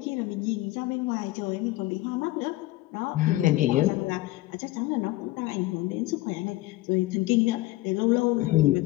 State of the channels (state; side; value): quieter; right; 18.0 dB